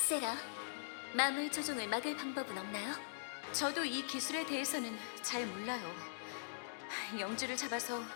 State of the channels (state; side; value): quieter; right; 35.6 dB